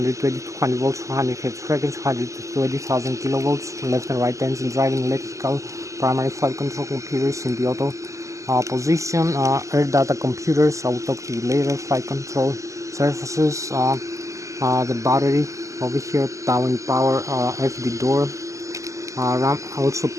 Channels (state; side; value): late; left; 0.16 ms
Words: 200 volts, 100 Hz frequency, 120,000 kilovolts, left and right engine driving, electrical, primary flight control computers in the auto position, air data computers. I will talk to you later. Flight control surfaces, the battery over here, down power, FD door, RAM, also